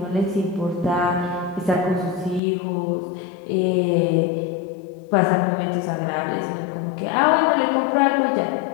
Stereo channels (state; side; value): drops out; right; at 2.4 s